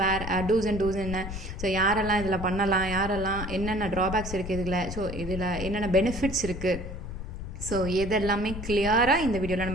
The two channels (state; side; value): noise; left; rumble, 8 dB below the sound